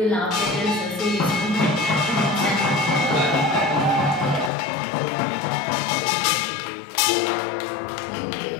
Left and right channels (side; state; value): right; drops out; at 4.5 s